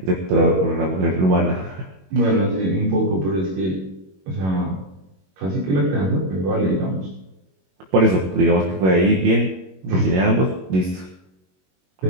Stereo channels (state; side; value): late; left; 21 ms